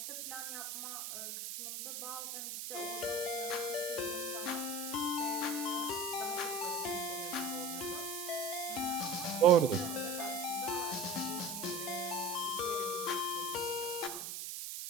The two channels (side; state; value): right; noise; hiss, 5 dB below the sound